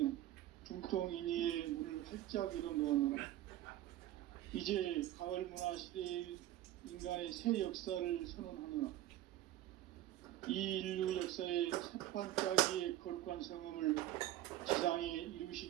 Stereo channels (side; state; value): left; quieter; 14.1 dB